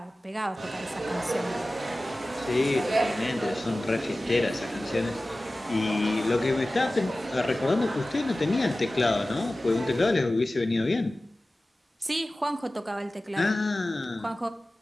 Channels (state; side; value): normal; both; correlation 0.96